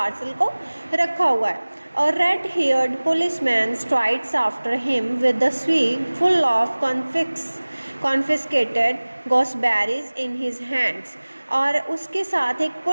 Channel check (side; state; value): both; inverted; correlation -1.00